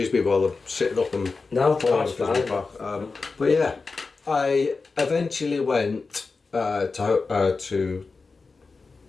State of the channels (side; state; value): right; quieter; 4.2 dB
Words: me while I'm sitting up and... No, that's fine. But yeah, I eventually went to